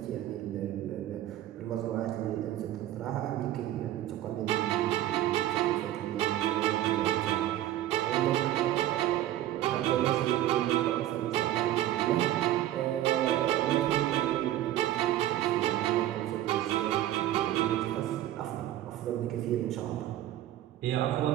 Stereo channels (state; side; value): quieter; left; 13.4 dB